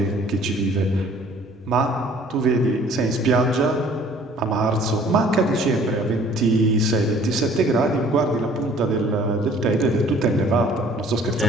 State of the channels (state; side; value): normal; both; correlation 0.54